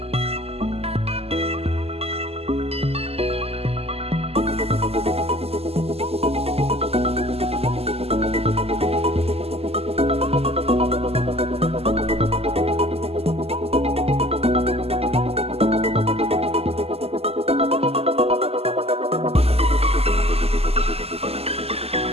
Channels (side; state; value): left; late; 0.29 ms